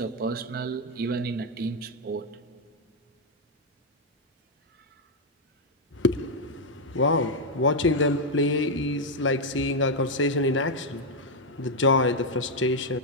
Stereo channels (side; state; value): both; normal; correlation 0.00